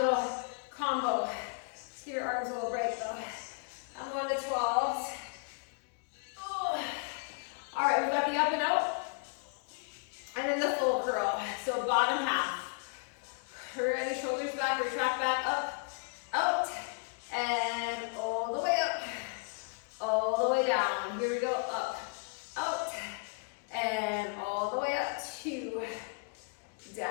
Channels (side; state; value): right; quieter; 34.1 dB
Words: combo. Let's give your arms a little break though. I'm going to 12s. Oh. All right, we've got the up and out. And then the full curl. So bottom half. Ready, shoulders back, retract back, up, out, and all the way up, all the way down. Here we go, up, out, and all the way up, 2,